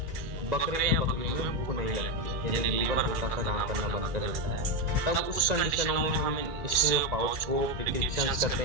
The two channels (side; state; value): left; late; 2.3 ms